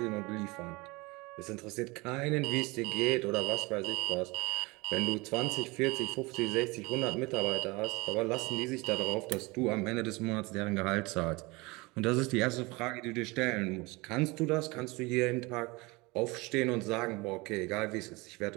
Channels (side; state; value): left; quieter; 24.4 dB